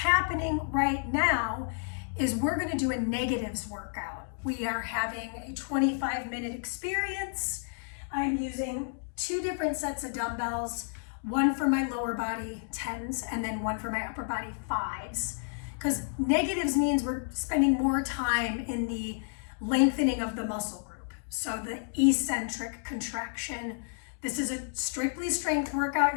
right now is we're going to do a negatives workout. We are having a 25-minute experience. I'm using 2 different sets of dumbbells, one for my lower body 10s and then one for my upper body 5s. Because negatives means we're spending more time in the lengthening of the muscle group. So the eccentric contraction. This is a strictly strength workout.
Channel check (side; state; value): right; silent; digital silence